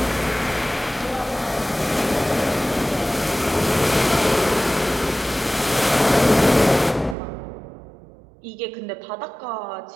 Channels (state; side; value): drops out; left; at 7.2 s